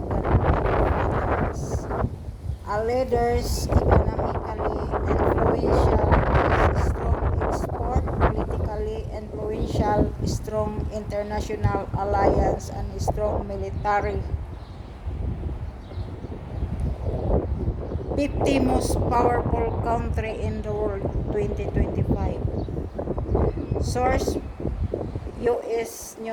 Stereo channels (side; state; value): both; identical; correlation 1.00